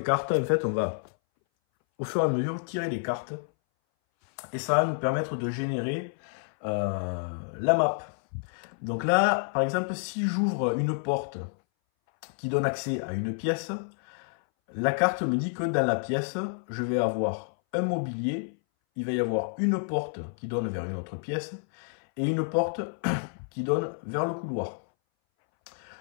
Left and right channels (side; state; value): right; silent; 59 dB below the other